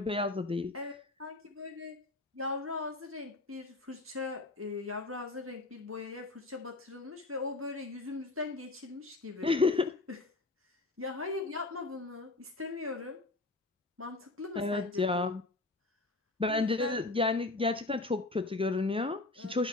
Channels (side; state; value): right; quieter; 3.1 dB